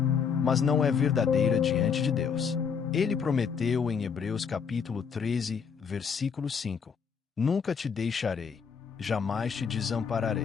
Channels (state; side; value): quieter; right; 6.4 dB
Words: mas não é verdadeira diante de Deus. Ele prometeu em Hebreus capítulo 13, versículo 5: "Nunca te deixarei, jamais te